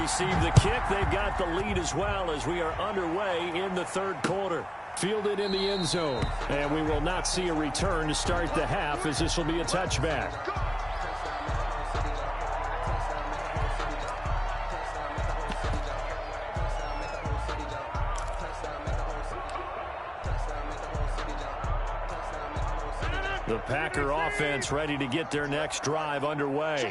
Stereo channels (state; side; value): identical; both; correlation 1.00